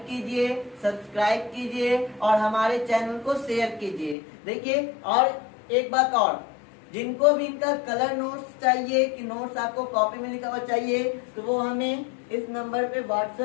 कीजिए, सब्सक्राइब कीजिए और हमारे चैनल को शेयर कीजिए। देखिए और एक बात और, जिनको भी इनका कलर नोट्स चाहिए कि नोट्स आपको कॉपी में लिखा हुआ चाहिए तो वो हमें इस नंबर पे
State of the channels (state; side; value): drops out; right; at 4.2 s